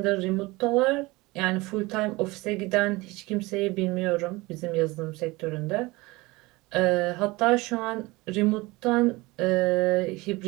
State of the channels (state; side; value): quieter; left; 22.2 dB